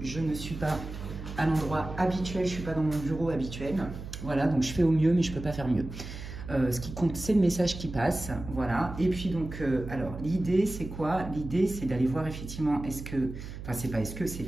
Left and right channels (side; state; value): right; noise; hum, 10 dB below the sound